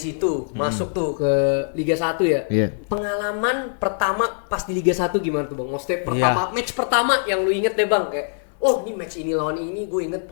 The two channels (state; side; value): silent; right; digital silence